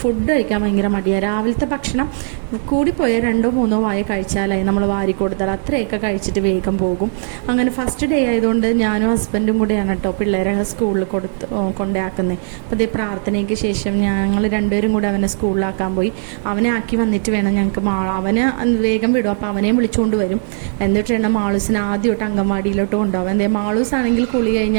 ഫുഡ് കഴിക്കാൻ ഭയങ്കര മടിയാണ്. രാവിലത്തെ ഭക്ഷണം കൂടിപ്പോയാൽ 2-3 വായ കഴിച്ചാലായി നമ്മൾ വാരി കൊടുത്താൽ അത്രയൊക്കെ കഴിച്ചിട്ട് വേഗം പോകും. അങ്ങനെ ഫസ്റ്റ് ഡേ ആയതുകൊണ്ട് ഞാനും ഹസ്ബൻഡും കൂടെ കേട്ടോ പിള്ളേരെ സ്കൂളിൽ കൊണ്ടാക്കുന്നത്. അപ്പോൾ അതേ പ്രാർത്ഥനയ്ക്ക് ശേഷം ഞങ്ങൾ 2 പേരും കൂടെ അവനെ സ്കൂളിലാക്കാൻ പോയി. അവനെ ആക്കി വന്നിട്ട് വേണം ഞങ്ങൾക്ക് അവന് വേഗം വിടും. അപ്പോൾ അവനെയും വിളിച്ചുകൊണ്ട് വരും. എന്നിട്ട് വേണം മാളൂസിനെ ആദ്യമായിട്ട് അംഗൻവാടിയിലോട്ട് കൊണ്ടുപോകാൻ. എന്തേ മാളൂസ് ആണെങ്കിൽ കുളി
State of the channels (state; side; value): silent; left; 67 dB below the other